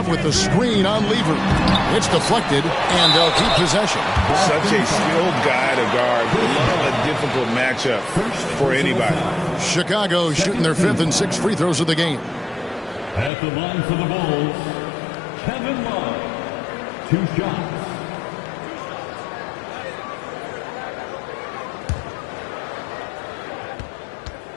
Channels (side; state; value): right; drops out; at 13.3 s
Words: with the screen on Lever. It's deflected, and they'll keep possession. Such a skilled guy to guard. Love a difficult matchup for anybody. Chicago shooting their 5th and 6th free throws of the game. At the line for the Bulls, Kevin Love, 2 shots.